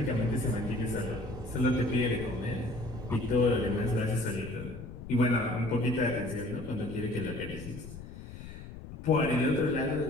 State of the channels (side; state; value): left; noise; rumble, 12 dB below the sound